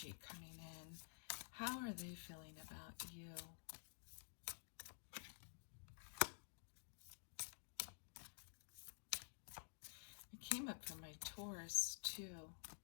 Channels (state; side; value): silent; right; digital silence